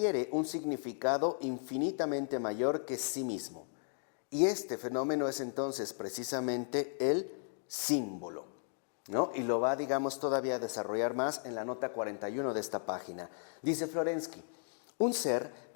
un significado infinitamente mayor que sí mismo. Y este fenómeno es entonces precisamente el símbolo, ¿no? Y lo va, digamos, todavía a desarrollar más en la nota 41 de esta página. Dice Florensky: un ser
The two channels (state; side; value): silent; right; 54 dB below the other